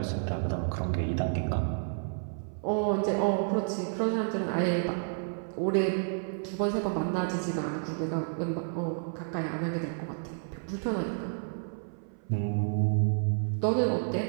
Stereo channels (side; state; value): left; silent; 56 dB below the other